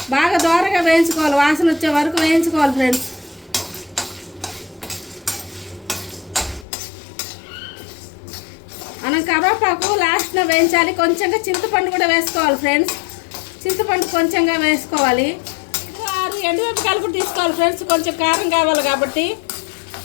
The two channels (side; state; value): right; drops out; at 6.7 s